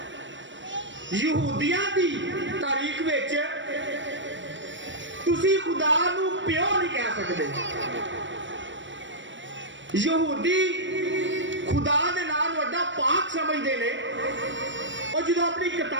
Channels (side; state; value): left; late; 0.54 ms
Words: यहूदियां दी तारीख विच तुसी खुदा नू प्यो नहीं कह सकते। यहूदी खुदा दे नाम वड्डा पाक समझते ने, और जो अपनी